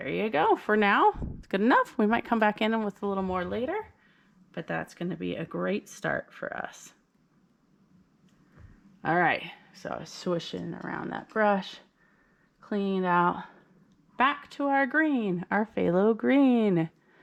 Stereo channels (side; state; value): both; identical; correlation 1.00